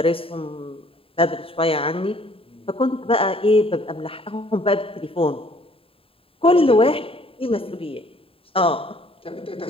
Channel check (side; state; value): right; late; 0.27 ms